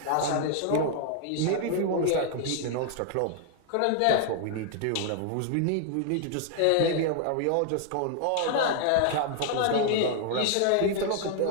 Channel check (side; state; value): both; different; correlation 0.00